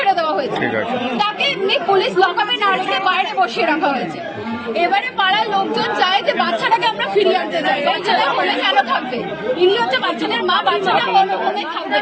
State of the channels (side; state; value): both; identical; correlation 1.00